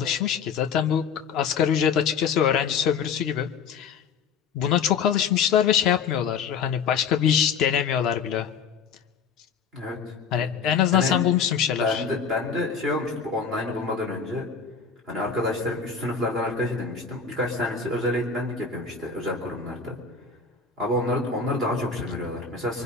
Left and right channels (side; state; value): right; quieter; 6.2 dB